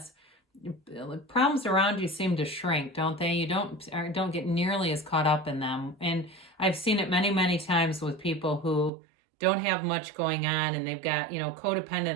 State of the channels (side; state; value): left; drops out; at 8.9 s